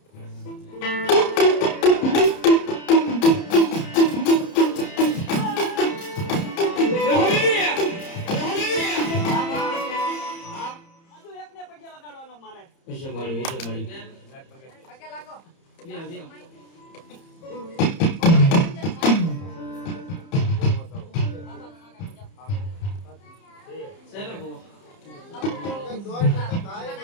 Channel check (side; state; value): right; late; 30 ms